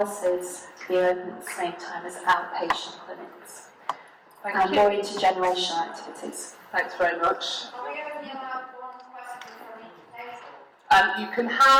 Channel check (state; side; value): identical; both; correlation 1.00